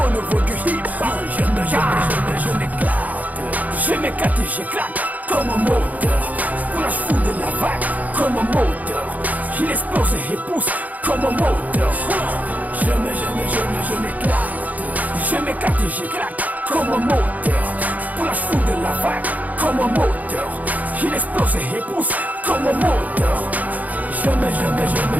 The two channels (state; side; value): late; left; 0.077 ms